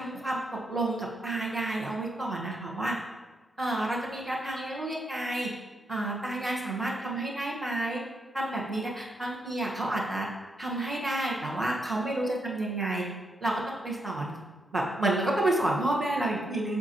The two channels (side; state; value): both; normal; correlation 0.79